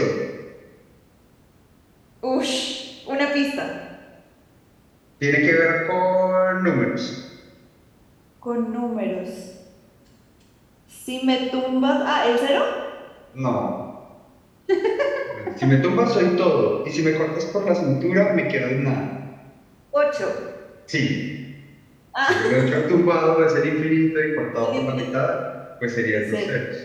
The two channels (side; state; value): both; identical; correlation 1.00